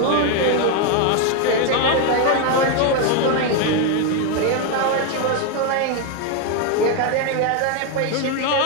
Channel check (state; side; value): different; both; correlation 0.01